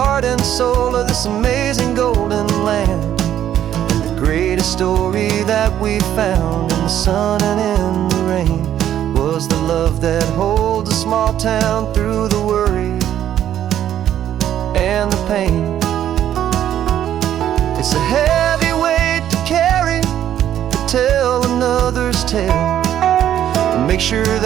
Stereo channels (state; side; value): quieter; left; 11.0 dB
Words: and soul of this amazing golden land. Greatest story that we found in the sun and in the rain was the love that holds a small town through the worry and the pain. It's a heavy weight to carry, to tell another's tale, and make sure